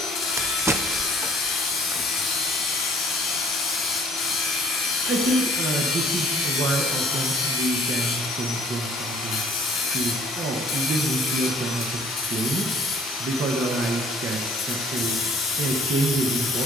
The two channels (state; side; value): normal; both; correlation 0.56